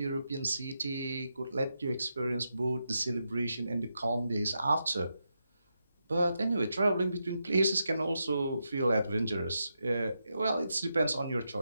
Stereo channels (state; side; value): inverted; both; correlation -0.85